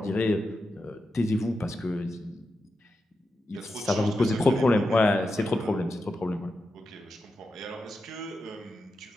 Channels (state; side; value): normal; both; correlation 0.89